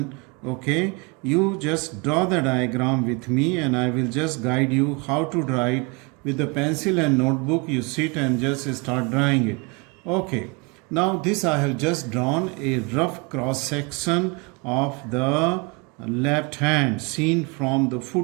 okay, you just draw the diagram with me and I will just guide you how to draw it. With the pencil and notebook, you sit and just start drawing it. Okay, now this I have just drawn a rough cross section of the left hand seen from the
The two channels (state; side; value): quieter; left; 29.5 dB